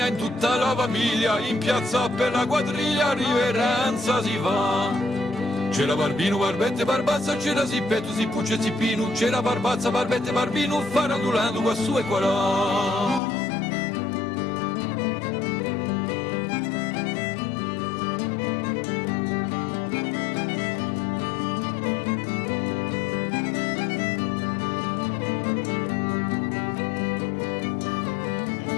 in tutta la famiglia, in piazza per la quadriglia riverenza si fa. C'era Barbino, Barbette, Barbazza, c'era Zippetto, Zippucce, Zippino, c'era Barbazza, Barbette, Barbino, farandulando qua su e qua là.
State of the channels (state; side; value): drops out; right; at 13.2 s